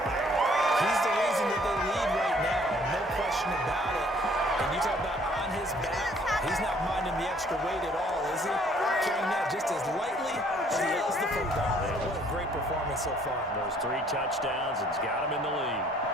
back. He's the reason that they lead right now, no question about it. And you talk about on his back, he's not minding the extra weight at all, is he? Carrying that just as lightly as he is the football. What a great performance so far. Those 3 touchdowns, it's got him in the lead.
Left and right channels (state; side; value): normal; both; correlation 0.60